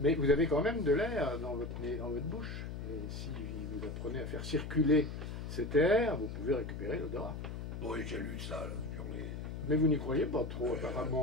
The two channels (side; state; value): left; noise; hum, 6 dB below the sound